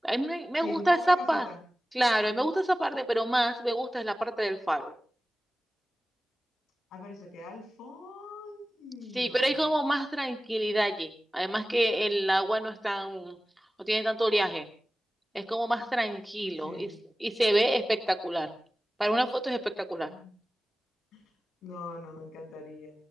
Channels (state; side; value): normal; both; correlation 0.96